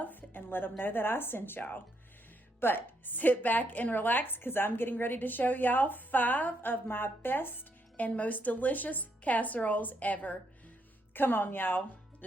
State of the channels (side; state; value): both; normal; correlation 0.76